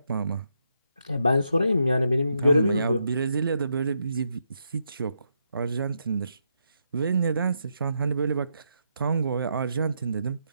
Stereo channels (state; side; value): inverted; both; correlation -0.81